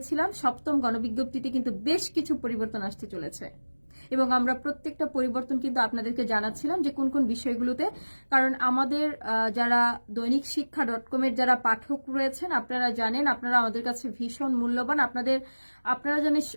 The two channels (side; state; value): both; inverted; correlation -1.00